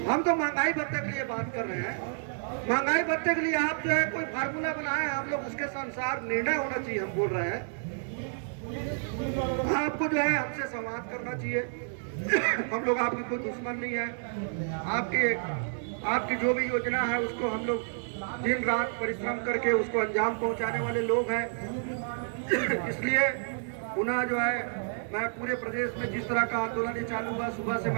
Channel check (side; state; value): left; silent; digital silence